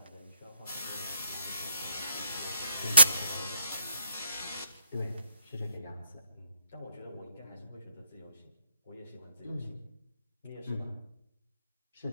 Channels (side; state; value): both; inverted; correlation -0.71